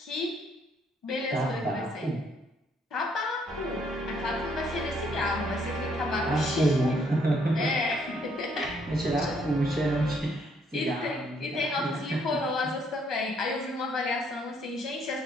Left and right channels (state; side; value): normal; both; correlation 0.68